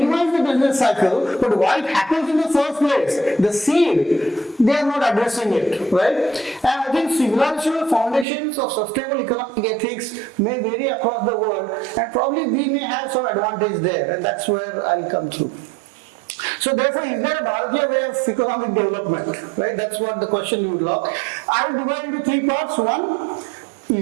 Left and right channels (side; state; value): left; drops out; at 8.2 s